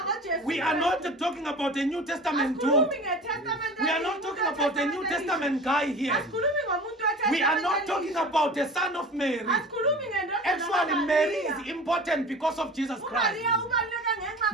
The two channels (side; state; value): both; normal; correlation 0.38